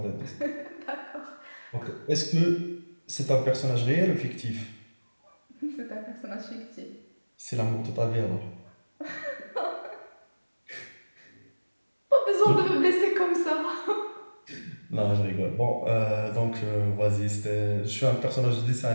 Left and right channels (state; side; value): inverted; both; correlation -1.00